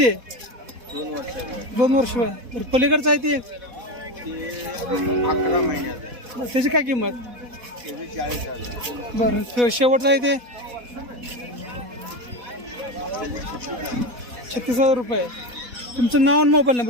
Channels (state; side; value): late; left; 4.1 ms